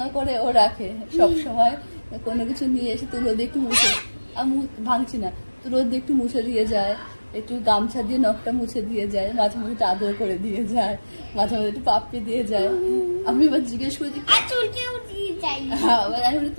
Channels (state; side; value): inverted; both; correlation -1.00